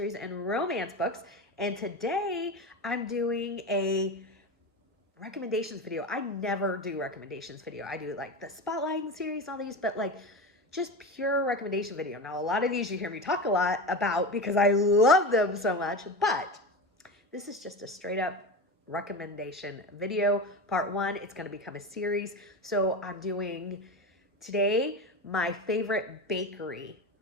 and romance books. And today I'm doing a recommendations video. I never do recommendations video. I do like the spotlighting series and all these, but like just pure recommendation video. Now, a lot of these you hear me talk a lot about because I love them so much, but this is just a straight up recommendation video. Part one, it's going to become a series. So I'm doing today my favorite bakery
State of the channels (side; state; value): both; normal; correlation 0.24